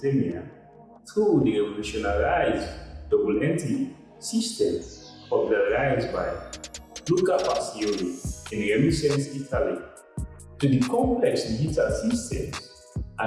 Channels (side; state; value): both; identical; correlation 1.00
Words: through the revolutionized double entry system popularized by Luca Pacioli in Renaissance Italy, to the complex digital systems